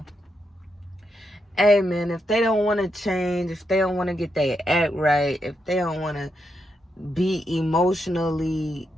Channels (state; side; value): normal; both; correlation 0.83